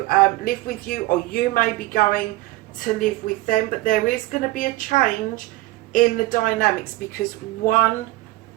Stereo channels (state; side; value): quieter; left; 18.8 dB